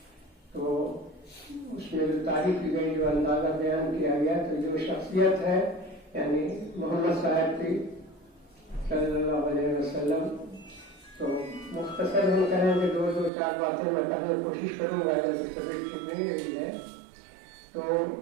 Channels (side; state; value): left; drops out; at 13.3 s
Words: تو اس میں جو تعریف کی گئی, جو اندازہ بیان کیا گیا, تو جو شخصیت ہے یعنی محمد صاحب کی صلی اللہ علیہ وسلم, تو مختصر ہم کہیں کہ دو چار باتیں میں کہنے کی کوشش کروں گا جب اس طبیعت ٹھیک نہیں رہی ہے. تو